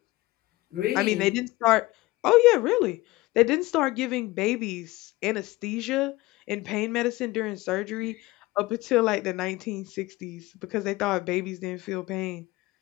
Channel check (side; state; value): right; quieter; 19.8 dB